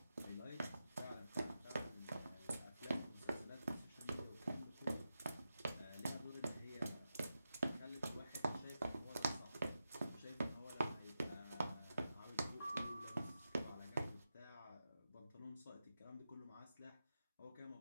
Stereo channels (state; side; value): inverted; both; correlation -0.90